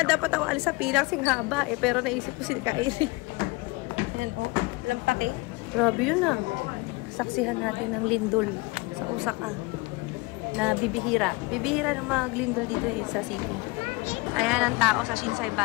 dapat ako alis sa pilang sing haba eh. Pero naisip ko si Kyrie. Yan oh, lampake. Grabe yun ah. Saksihan natin ng lindol sa Osaka na bibihira. Bibihira ng mga lindol dito eh, sa city. Ayan ang tao sa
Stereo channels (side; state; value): right; quieter; 24.7 dB